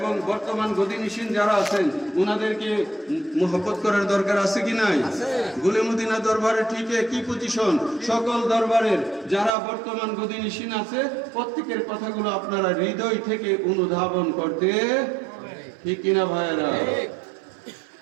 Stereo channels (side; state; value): left; drops out; at 9.5 s